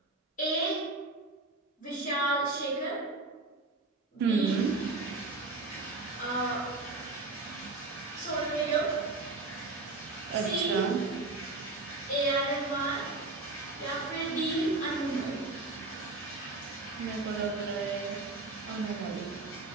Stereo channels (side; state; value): left; quieter; 3.3 dB